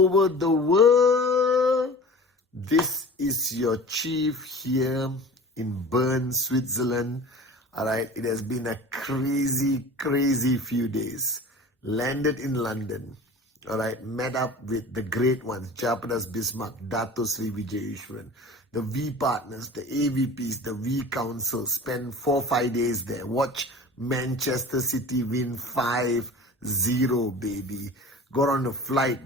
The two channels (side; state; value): both; normal; correlation 0.39